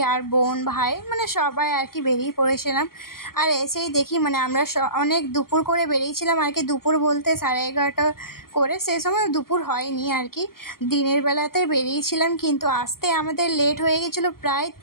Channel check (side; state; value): right; late; 0.92 ms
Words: আর বোন, ভাই, মানে সবাই আর কি বেরিয়ে পড়েছিলাম। আর এসেই দেখি মানে আমরা অনেক দুপুর করে বেরিয়েছিলাম আর কি। দুপুর বলতে 11:30 করে, সেই সময় দুপুর হয়নি আর কি, দিনের বেলাতে বেরিয়েছিলাম। কিন্তু আসতে আমাদের লেট হয়ে গেছিলো প্রায়